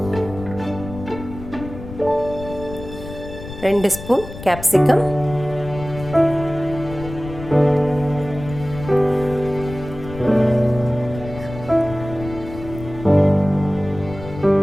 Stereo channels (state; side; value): noise; left; rumble, 12 dB below the sound